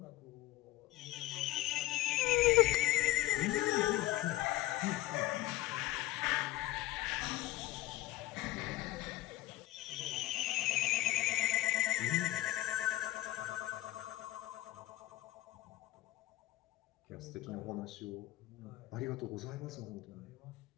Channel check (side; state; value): right; quieter; 16.5 dB